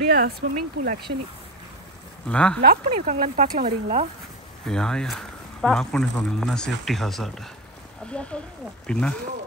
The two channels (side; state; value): both; normal; correlation 0.21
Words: ஸ்விம்மிங் பூல். ஆக்சுவலி லாக் பண்ணியிருக்காங்களான்னு பார்க்கலாம், வரீங்களா? யா லாக் பண்ணியிருக்காங்க, இல்லைன்னா சேஃப்டி ஹசார்ட். அப்படியா சொல்கிறீங்க? பின்ன